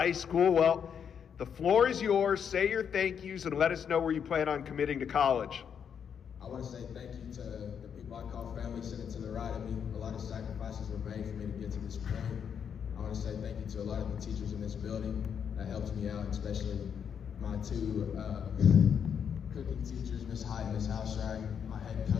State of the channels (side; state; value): right; quieter; 7.6 dB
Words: School. Well, the floor is yours. Say your thank yous and let us know where you plan on committing to college. I want to say thank you to the people I call family sitting to the right of me. A lot of sacrifices were made for me to get to this point. I want to say thank you to a lot of the teachers in this building that helped me out, especially my two cooking teachers, Miss Hyde and Miss Houserack, my head